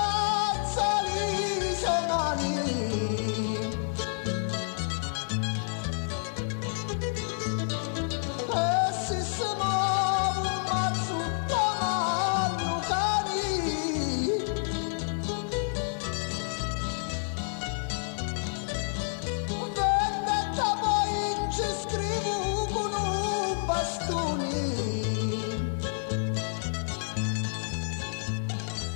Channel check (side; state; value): right; silent; 58 dB below the other